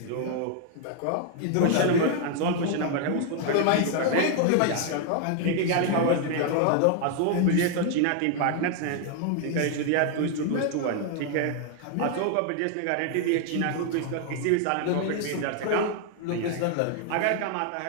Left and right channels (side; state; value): both; different; correlation 0.00